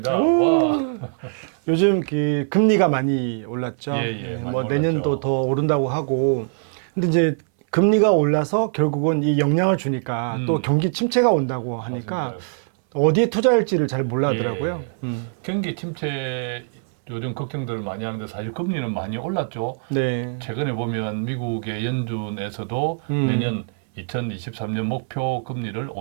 와. 요즘 그 금리가 많이 올랐죠. 예, 많이 뭐 올랐죠. 내년도 더 오른다고 하고. 근데 이제 금리가 올라서 결국은 이 영향을 주니까 또 경기 침체가 온다고 하니까 맞습니다. 어디에 투자할지를 잘 몰라더라고요. 예. 경기 침체 요즘 걱정들을 많이 하는데 사실 금리는 많이 올랐죠. 네. 최근에 보면 미국의 연준에서도 내년 2023년 목표 금리를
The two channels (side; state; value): left; silent; 61 dB below the other